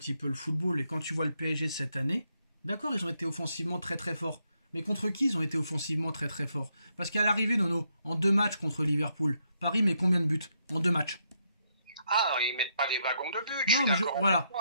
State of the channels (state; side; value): inverted; both; correlation -0.77